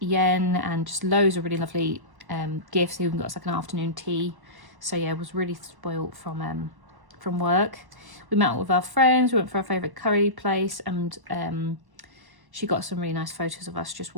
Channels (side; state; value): left; late; 1.1 ms